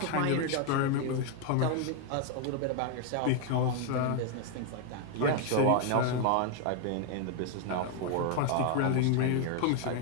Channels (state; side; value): different; both; correlation 0.00